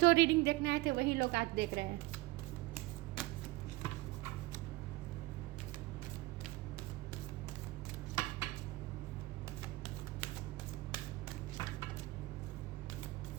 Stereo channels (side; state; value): left; quieter; 20.0 dB